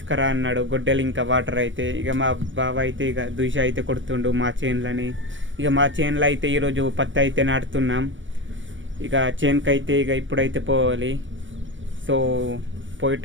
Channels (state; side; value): late; left; 0.56 ms